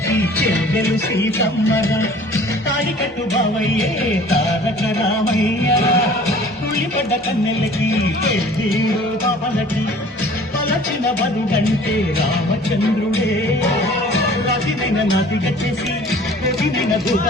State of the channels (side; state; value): both; normal; correlation 0.49